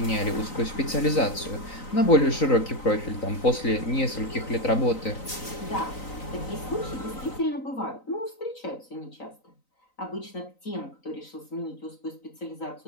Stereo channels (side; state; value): right; late; 3.9 ms